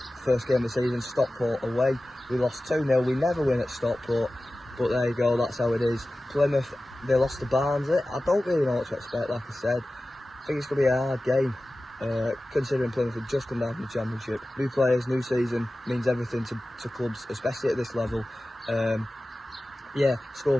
first game of the season, Stockport away. We lost 2-0. We never win at Stockport, but there you go, that's how it is. Plymouth, they lost to Barnes. I don't really know what to expect, like I said. I think it's going to be a hard game, considering Plymouth have just come down from the Championship. New players, new season, means everything to clubs, especially at this level. Yeah, score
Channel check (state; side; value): normal; both; correlation 0.96